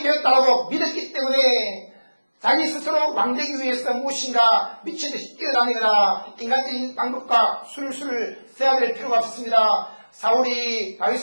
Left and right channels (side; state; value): both; inverted; correlation -1.00